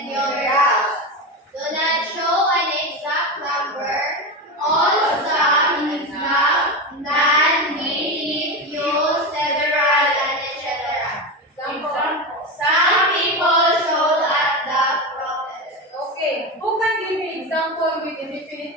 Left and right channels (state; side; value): normal; both; correlation 0.19